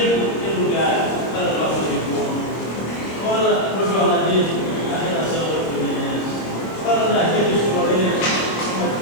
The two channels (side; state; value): right; late; 26 ms